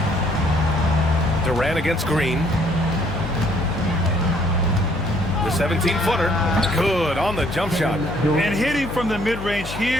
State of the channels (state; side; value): noise; left; hum, 10 dB below the sound